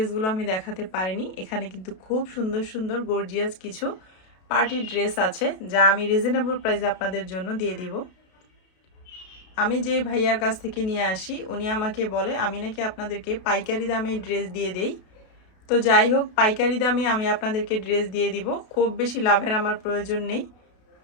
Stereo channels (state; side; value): late; right; 32 ms